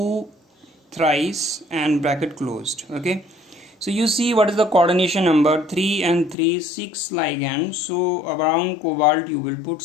thrice and bracket closed. Okay, so you see what is the coordination number? 3 and 3, 6 ligands. So around cobalt you will put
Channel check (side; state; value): right; drops out; at 6.4 s